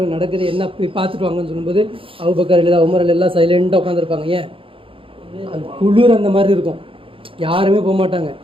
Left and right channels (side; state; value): left; late; 0.26 ms